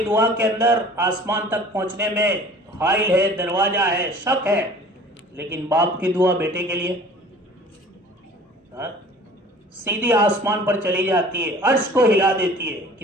दुआ के अंदर आसमान तक पहुंचने में हाइल है, दरवाजा है, शक है, लेकिन बाप की दुआ बेटे के लिए सीधी आसमान पर चली जाती है, अर्श को हिला देती है।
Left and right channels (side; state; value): both; normal; correlation 0.46